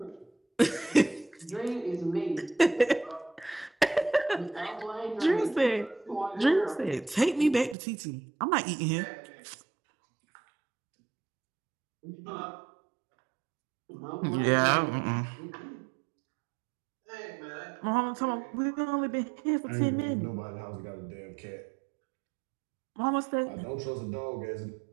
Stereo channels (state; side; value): drops out; left; at 7.8 s